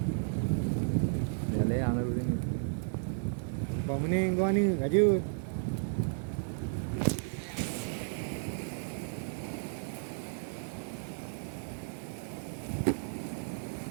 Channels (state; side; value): silent; left; digital silence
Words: Để lấy ăn rồi đi. Bang mening kau ni kerja.